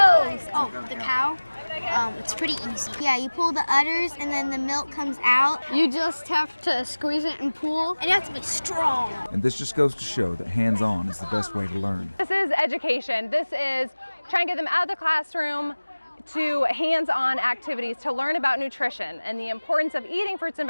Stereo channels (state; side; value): inverted; both; correlation -1.00